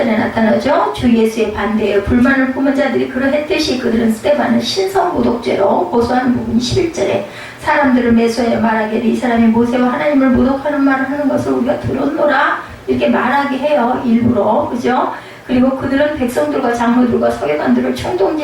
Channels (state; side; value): identical; both; correlation 1.00